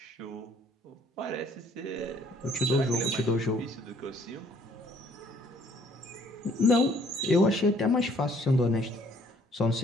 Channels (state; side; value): normal; both; correlation 0.61